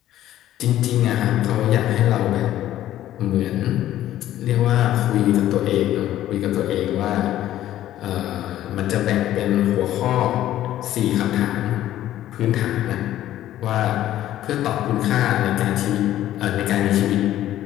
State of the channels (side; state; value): right; quieter; 13.1 dB